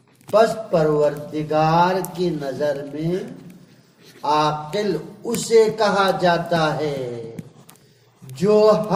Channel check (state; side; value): identical; both; correlation 1.00